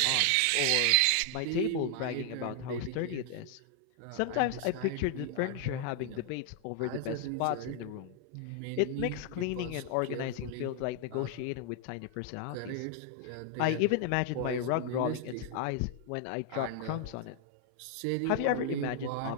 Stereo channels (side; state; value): both; different; correlation 0.00